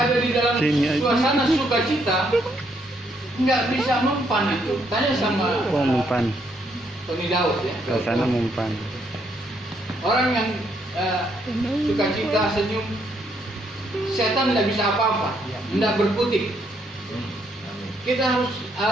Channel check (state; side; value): normal; both; correlation 0.73